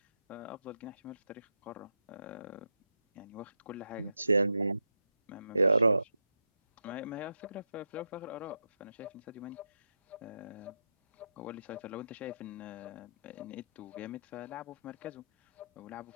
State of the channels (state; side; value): inverted; both; correlation -0.84